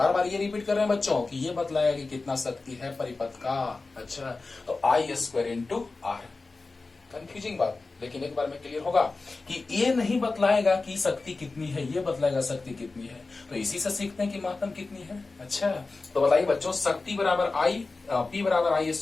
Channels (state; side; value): quieter; right; 3.7 dB